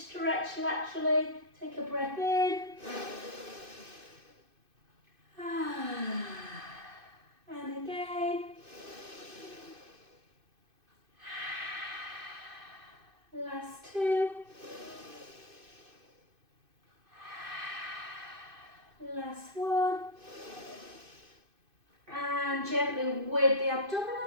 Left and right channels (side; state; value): left; late; 2.5 ms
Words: laterally. Take a breath in. And again. Last 2. Last 1. And gently with the